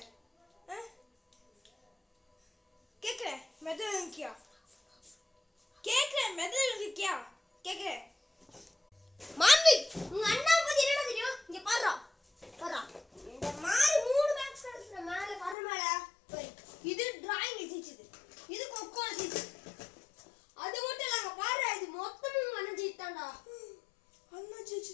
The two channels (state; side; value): drops out; right; at 15.6 s